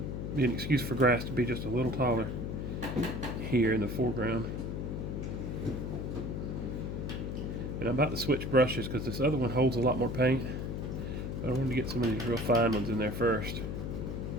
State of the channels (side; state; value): left; noise; hum, 4 dB below the sound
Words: be an excuse for grass to be just a little taller here in the foreground. And I'm about to switch brushes because this other one holds a lot more paint. I wanted to get some of these real fine ones in there first.